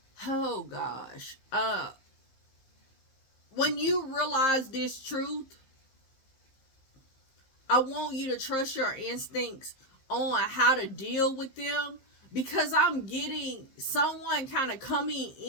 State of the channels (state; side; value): late; right; 15 ms